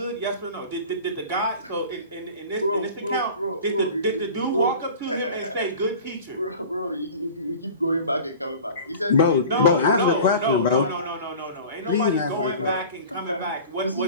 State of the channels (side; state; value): both; inverted; correlation -0.40